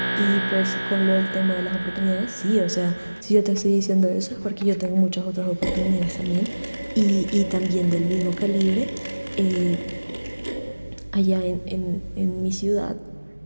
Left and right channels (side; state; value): both; inverted; correlation -1.00